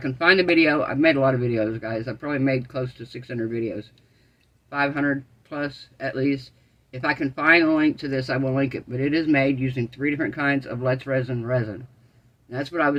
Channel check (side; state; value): both; identical; correlation 1.00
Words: find the video, I've made a lot of videos, guys. I've probably made close to 600 videos. 500 plus, at least. If I can find a link to this, I will link it. But it is made using 3 different kinds of Let's Resin resin. And that's what I